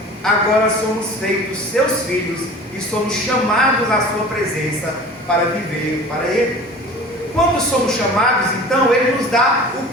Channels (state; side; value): normal; both; correlation 0.40